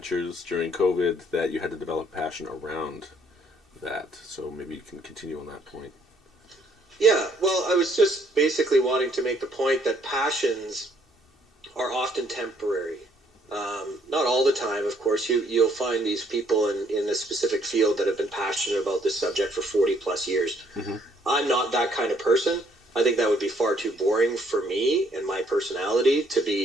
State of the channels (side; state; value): both; normal; correlation 0.66